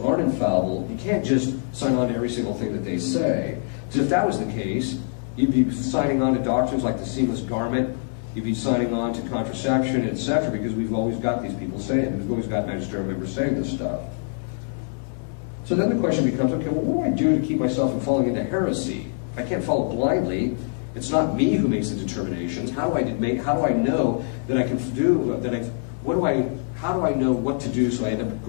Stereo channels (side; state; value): right; silent; digital silence